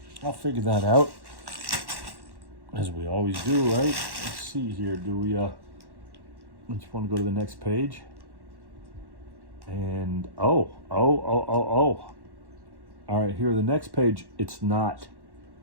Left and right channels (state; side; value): late; left; 1.1 ms